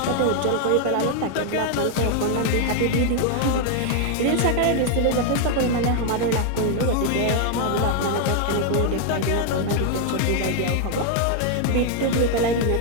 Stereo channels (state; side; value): different; both; correlation 0.00